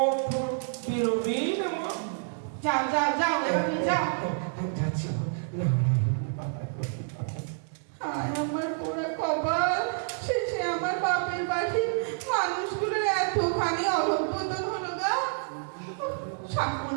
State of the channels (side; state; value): left; silent; digital silence